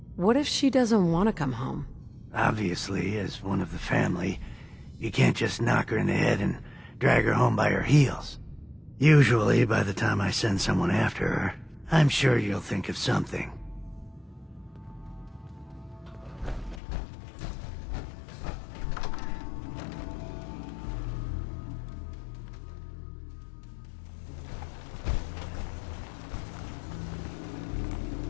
What if she doesn't want to come home? Obviously, as one of the family, you can't just knock her in the head and drag her home by her heels. Usually, by the time I send someone after her, I'm sure you'll think of something.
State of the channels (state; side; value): drops out; right; at 16.8 s